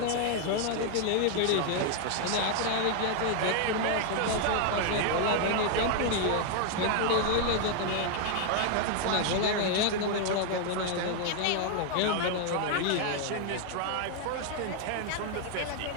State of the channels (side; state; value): both; different; correlation 0.00